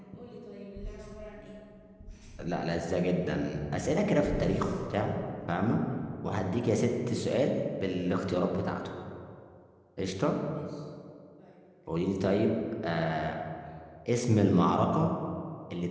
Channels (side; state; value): both; identical; correlation 1.00